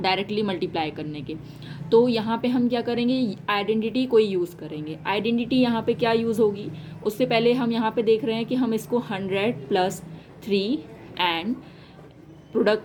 मल्टीप्लाई करने के। तो यहाँ पे हम क्या करेंगे, आइडेंटिटी कोई यूज़ करेंगे। आइडेंटिटी यहाँ पे क्या यूज़ होगी, उससे पहले हम यहाँ पे देख रहे हैं कि हम इसको 100 + 3 एंड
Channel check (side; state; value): both; identical; correlation 1.00